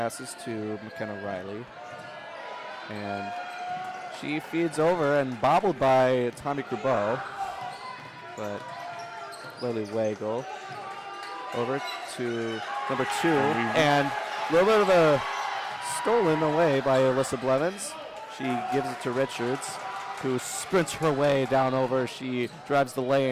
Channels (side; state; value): both; identical; correlation 1.00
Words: to McKenna Riley. And she feeds over and bobbled by Tommy Crubeau. But Lily Wagle over to number 2. And a little bit of a stolen away by Alyssa Blevins. She gives it to Richards, who sprints her way down over. She drives the